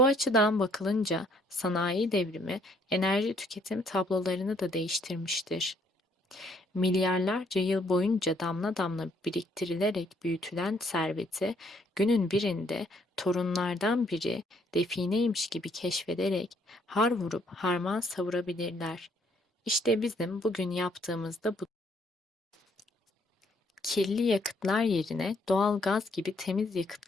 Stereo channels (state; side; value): normal; both; correlation 0.67